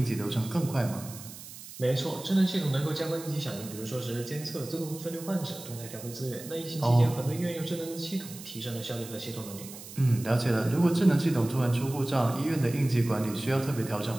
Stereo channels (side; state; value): right; noise; hiss, 14 dB below the sound